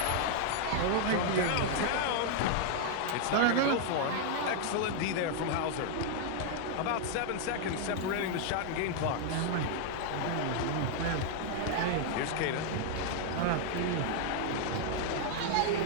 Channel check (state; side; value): different; both; correlation 0.00